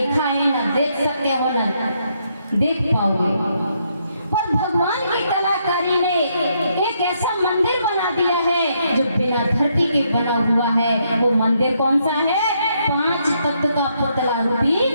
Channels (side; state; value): both; inverted; correlation -0.75